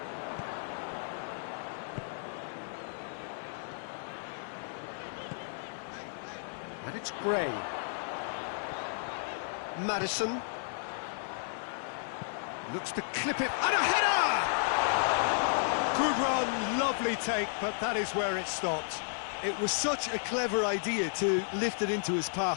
And it's Gray. Maddison. Looks to clip it, and a header! Good run, lovely take, but that is where it stopped. It was such a clever idea to lift it into his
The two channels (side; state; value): right; silent; 56 dB below the other